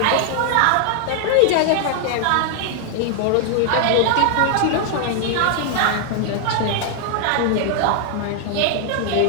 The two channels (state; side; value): different; both; correlation 0.00